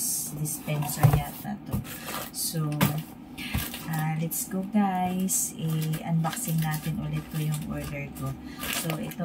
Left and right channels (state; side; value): identical; both; correlation 1.00